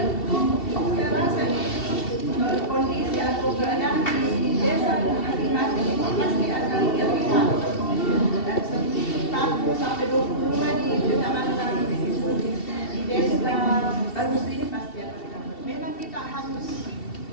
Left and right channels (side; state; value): right; late; 2.7 ms